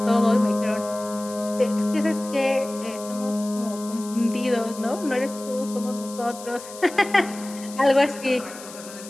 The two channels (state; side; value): noise; left; hiss, 15 dB below the sound